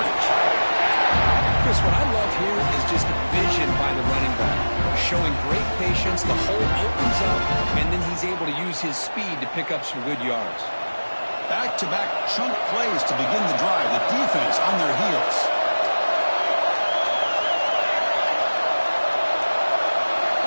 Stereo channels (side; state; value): both; inverted; correlation -1.00